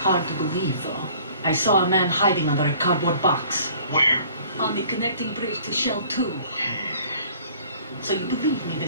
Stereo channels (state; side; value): inverted; both; correlation -0.52